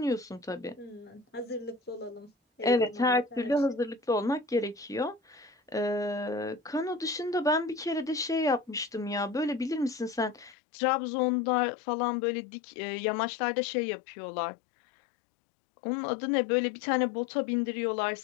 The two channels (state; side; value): drops out; right; at 10.6 s